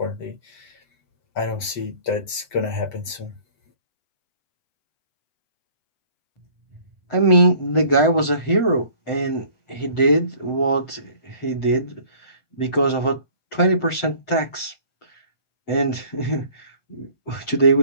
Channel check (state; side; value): late; right; 7.8 ms